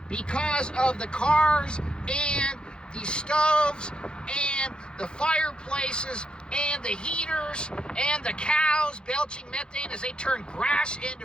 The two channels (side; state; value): right; late; 0.050 ms